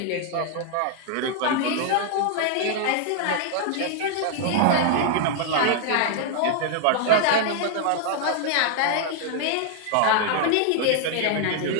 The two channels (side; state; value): both; different; correlation 0.00